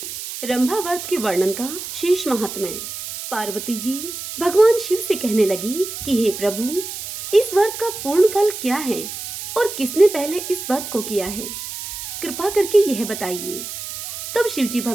रंभा व्रत के वर्णन का शेष महात्म्य। पार्वती जी भगवान शिव से कहने लगी कि हे प्रभु, इस व्रत का पूर्ण फल क्या है और किसने पहले इस व्रत को किया है, कृपा करके यह बताइए। तब शिवजी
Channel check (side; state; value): right; noise; hiss, 8 dB below the sound